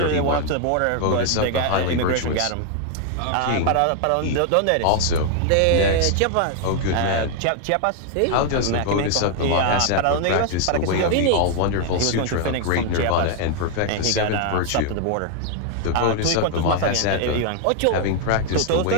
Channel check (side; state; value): both; different; correlation 0.00